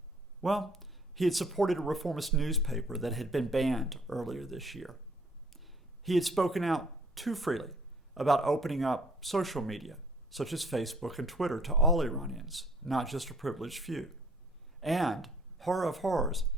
Well, he had supported a reformist newspaper that had been banned earlier this year. He had spoken out too freely about opening up social media, such as Facebook and Twitter, to all Iranians, not just a privileged few. And, horror of horrors,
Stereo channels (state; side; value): normal; both; correlation 0.58